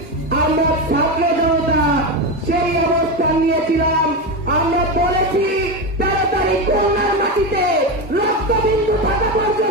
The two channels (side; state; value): both; normal; correlation 0.15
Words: আমরা ছাত্র জনতা সেই অবস্থান নিয়েছিলাম। আমরা বলেছি 13 তারিখ খুলনার মাটিতে রক্তবিন্দু থাকা